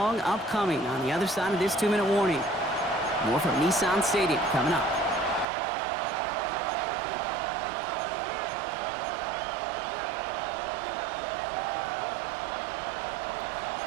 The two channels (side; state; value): left; drops out; at 5.5 s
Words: upcoming on the other side of this 2-minute warning. More from Nissan Stadium coming up.